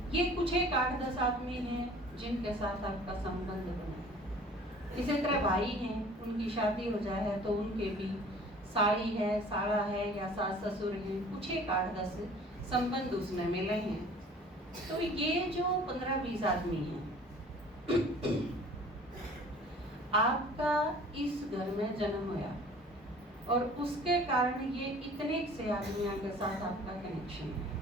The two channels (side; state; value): both; normal; correlation 0.48